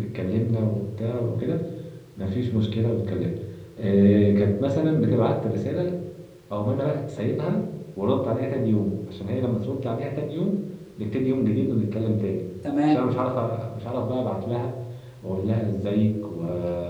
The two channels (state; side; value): identical; both; correlation 1.00